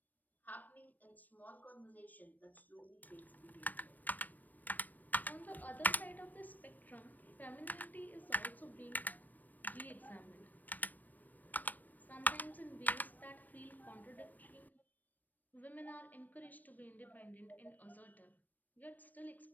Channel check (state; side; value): late; right; 0.085 ms